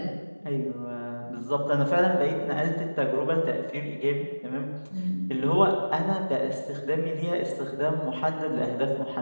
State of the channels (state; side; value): inverted; both; correlation -1.00